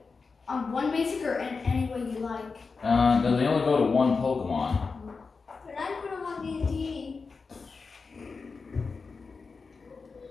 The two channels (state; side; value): quieter; right; 4.6 dB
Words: on one basic or any way you like. No, they only go to 1 Pokemon. But I put him on D&D.